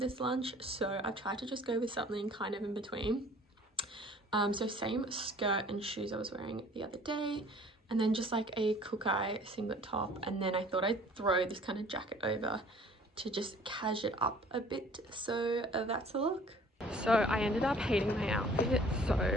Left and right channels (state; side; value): normal; both; correlation 0.52